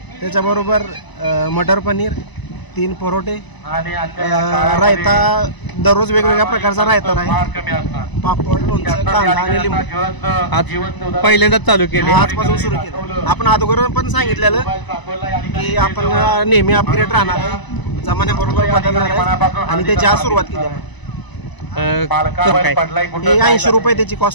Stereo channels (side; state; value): right; late; 1.0 ms